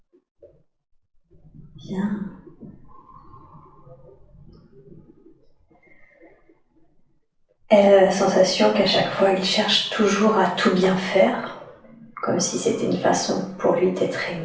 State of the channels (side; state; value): both; identical; correlation 1.00